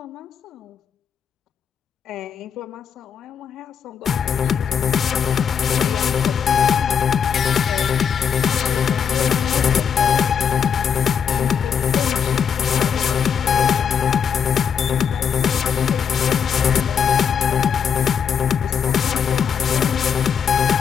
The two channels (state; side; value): quieter; right; 7.3 dB